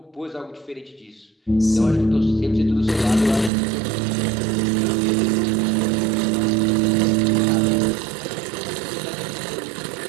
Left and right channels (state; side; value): drops out; left; at 3.5 s